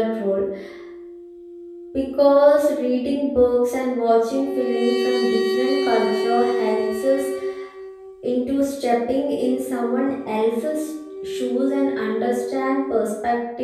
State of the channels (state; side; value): identical; both; correlation 1.00